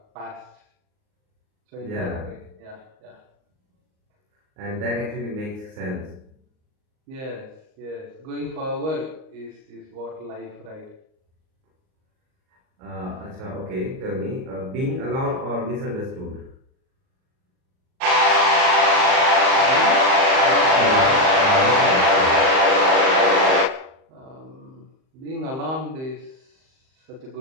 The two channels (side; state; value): left; late; 38 ms